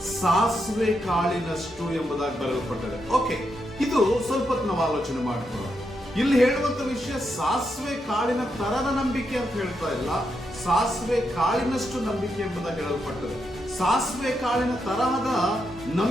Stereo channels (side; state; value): both; normal; correlation 0.82